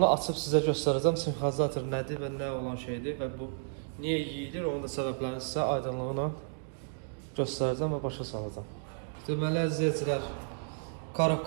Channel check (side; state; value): left; silent; digital silence